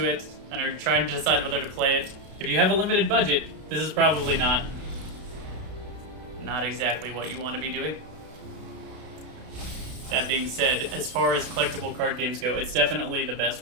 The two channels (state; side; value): late; left; 32 ms